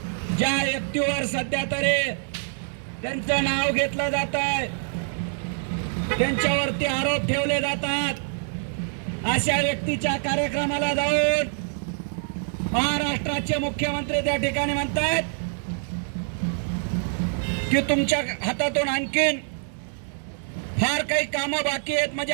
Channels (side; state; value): left; silent; digital silence